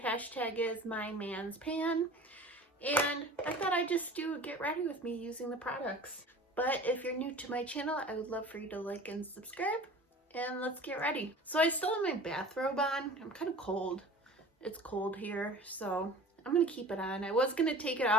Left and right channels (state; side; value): normal; both; correlation 0.41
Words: is MyMansPan. And I thought I'd just do a get ready with me using the products. But if you're new to my channel, I would love for you to like and subscribe. And let's get ready. So I still have my bathrobe on. I'm kind of cold. It's cold here, so I'm gonna keep it on. I was gonna take it